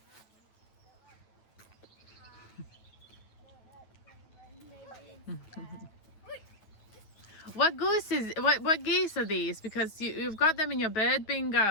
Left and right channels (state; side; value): late; right; 9.2 ms